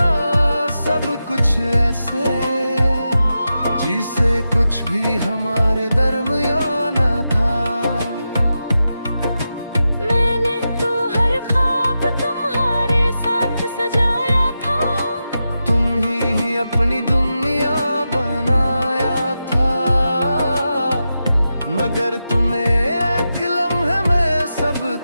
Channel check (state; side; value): inverted; both; correlation -0.90